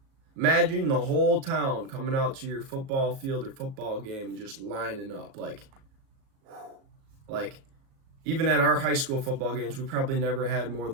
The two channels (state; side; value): late; left; 37 ms